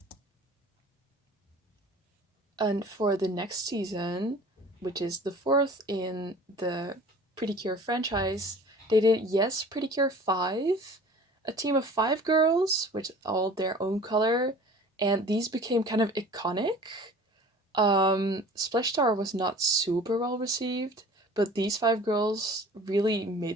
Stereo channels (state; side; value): normal; both; correlation 0.45